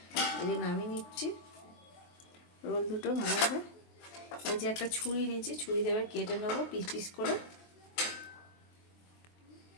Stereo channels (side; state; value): right; late; 23 ms